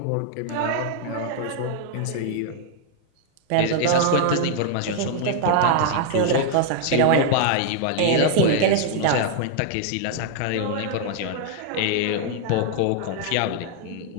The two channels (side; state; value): both; different; correlation 0.00